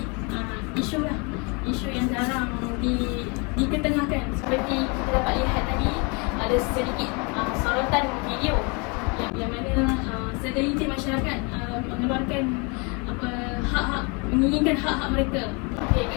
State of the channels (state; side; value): quieter; right; 31.4 dB